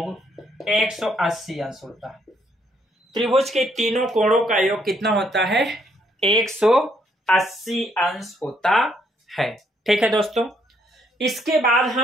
180 अंश होता है। त्रिभुज के तीनों कोणों का योग कितना होता है? 180 अंश होता है। ठीक है दोस्तों, इसके बाद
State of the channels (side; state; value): both; normal; correlation 0.71